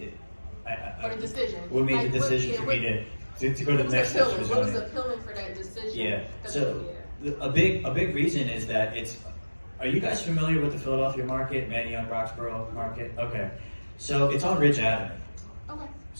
For the decision. what made Like, the decision for me to go to the next steps for What was zoning? appealing for that decision? Yeah. 'Cause, So a big reason is that are you guys familiar with the Philadelphia market, Manayunk, Roxborough market? Okay. So it's on Ridge Avenue. Okay.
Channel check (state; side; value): inverted; both; correlation -1.00